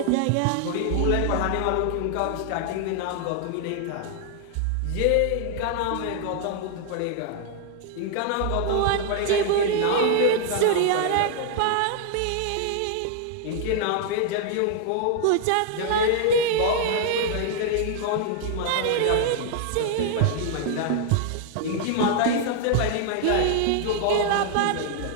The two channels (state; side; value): different; both; correlation 0.00